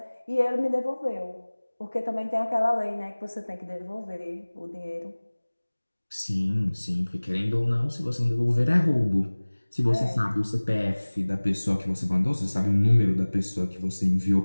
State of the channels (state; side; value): inverted; both; correlation -1.00